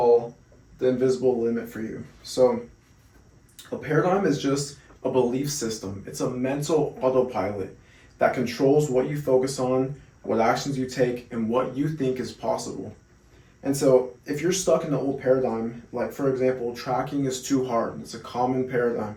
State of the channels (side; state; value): both; identical; correlation 1.00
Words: the invisible limit for you. So, a paradigm is just a belief system. It's a mental autopilot that controls what you focus on, what actions you take, and what you think is possible. And so, if you're stuck in the old paradigm, like for example, tracking is too hard, it's a common paradigm,